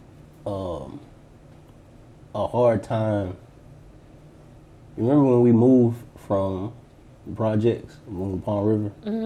a hard time? You remember when we moved from projects, moved to Palm River?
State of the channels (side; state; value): both; identical; correlation 1.00